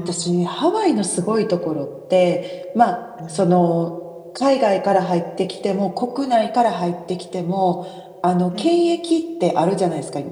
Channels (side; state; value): both; identical; correlation 1.00